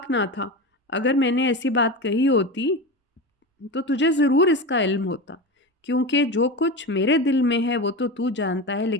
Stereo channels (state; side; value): normal; both; correlation 0.23